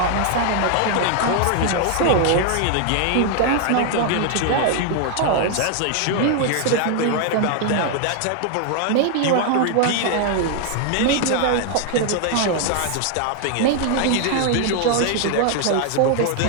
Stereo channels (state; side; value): different; both; correlation 0.00